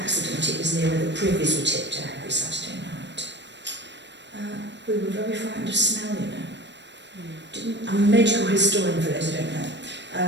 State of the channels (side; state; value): left; late; 0.52 ms